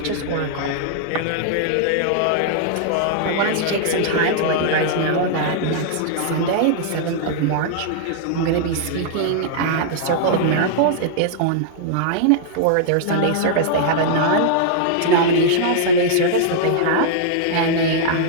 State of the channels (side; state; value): both; different; correlation -0.01